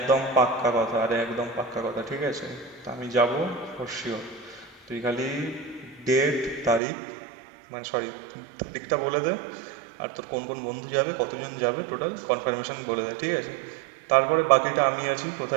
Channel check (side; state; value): left; drops out; at 6.8 s